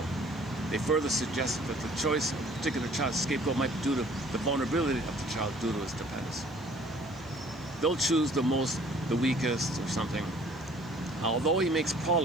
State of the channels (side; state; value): left; noise; hiss, 29 dB below the sound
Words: They further suggest that the choice of a particular child's scapegoat might be due to the vulnerability of the child due to his dependence. They'll choose the weakest or something. Although he makes